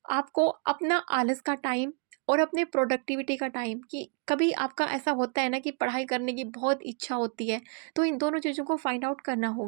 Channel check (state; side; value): quieter; left; 37.0 dB